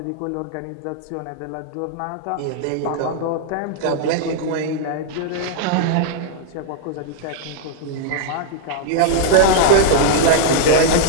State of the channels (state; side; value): different; both; correlation 0.00